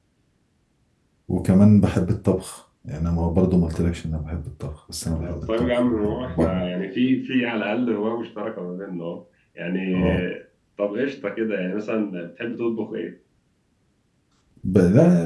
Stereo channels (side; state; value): both; identical; correlation 1.00